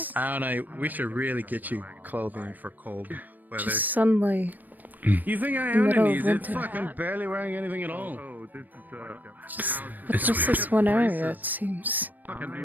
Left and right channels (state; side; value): late; left; 0.087 ms